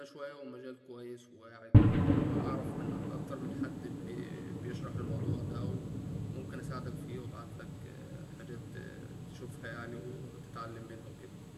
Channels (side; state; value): both; identical; correlation 1.00